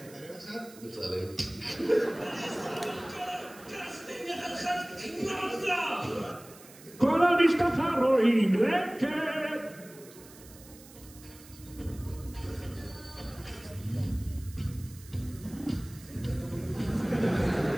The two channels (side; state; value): right; noise; hiss, 21 dB below the sound